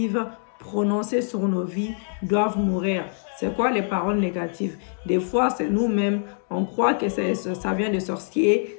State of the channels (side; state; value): right; silent; digital silence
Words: prononcées sur nos vies doivent mourir. C'est quoi les paroles négatives? Des fois, c'est nous-mêmes. On croit que ça vient de